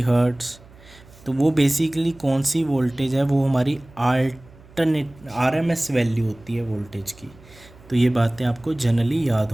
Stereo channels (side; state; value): right; noise; hum, 24 dB below the sound